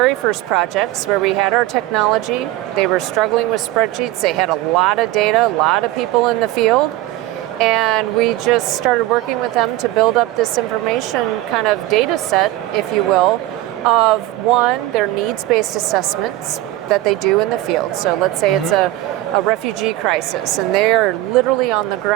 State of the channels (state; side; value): quieter; left; 16.3 dB